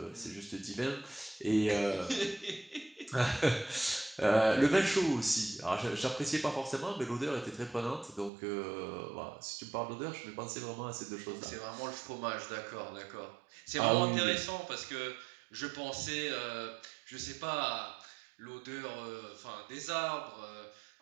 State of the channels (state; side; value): drops out; left; at 8.3 s